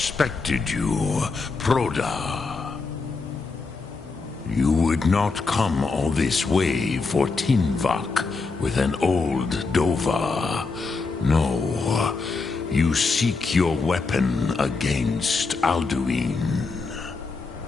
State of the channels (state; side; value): quieter; right; 4.2 dB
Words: you, Proda. You would not come all this way for Tinvak with an old Dova. No, you seek your weapon against Alduin.